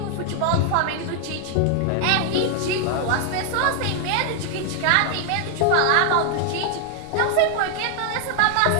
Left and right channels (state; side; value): different; both; correlation 0.00